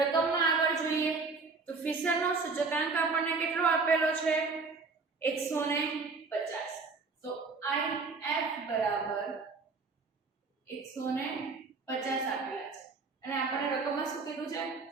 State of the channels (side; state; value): left; quieter; 4.3 dB